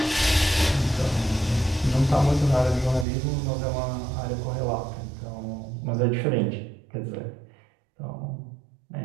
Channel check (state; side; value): drops out; left; at 3.1 s